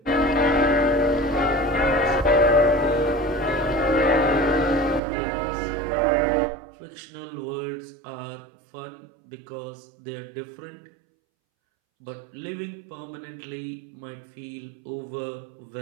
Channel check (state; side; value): drops out; left; at 5.0 s